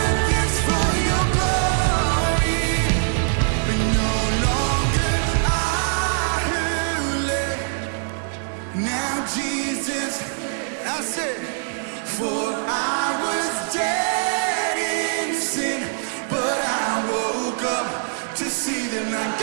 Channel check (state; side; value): silent; left; 57 dB below the other